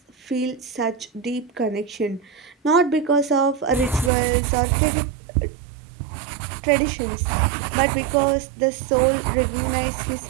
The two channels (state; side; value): drops out; left; at 4.1 s